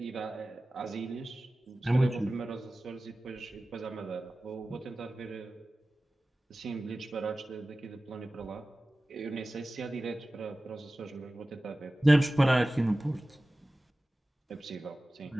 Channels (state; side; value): normal; both; correlation 0.96